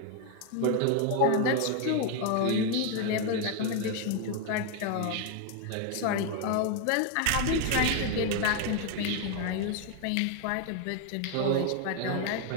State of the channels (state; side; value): different; both; correlation 0.01